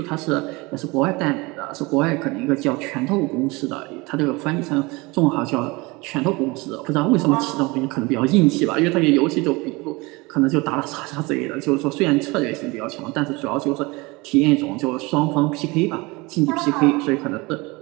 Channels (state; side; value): quieter; left; 24.3 dB